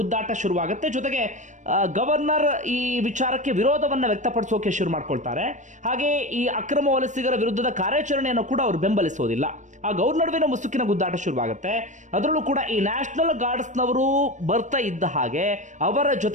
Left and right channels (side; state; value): left; late; 0.35 ms